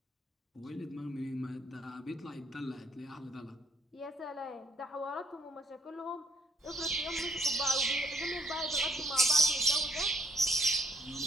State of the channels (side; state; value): both; normal; correlation 0.70